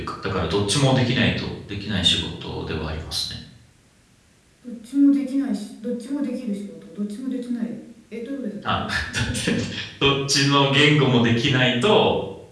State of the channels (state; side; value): identical; both; correlation 1.00